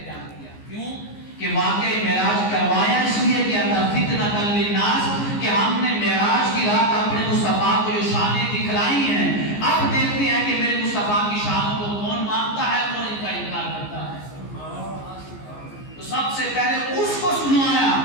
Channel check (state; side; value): late; right; 14 ms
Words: بیان کیا. کیوں کہ واقعہ معراج کروایا اس لیے کیا تھا فتنۃ للناس، کہ ہم نے معراج کی رات اپنے مصطفیٰ کو جو شانیں دکھلائی ہیں، اب دیکھتے ہیں کہ میرے مصطفیٰ کی شانوں کو کون مانتا ہے، کون ان کا انکار کرتا ہے. تو سب سے پہلے اس کو سنایا